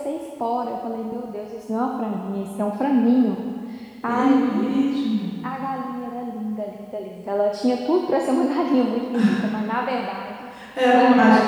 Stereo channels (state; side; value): identical; both; correlation 1.00